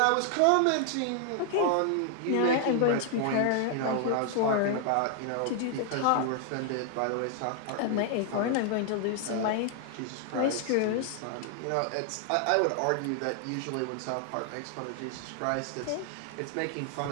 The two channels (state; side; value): different; both; correlation 0.00